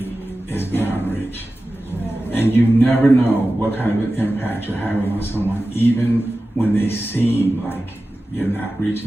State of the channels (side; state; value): both; normal; correlation 0.95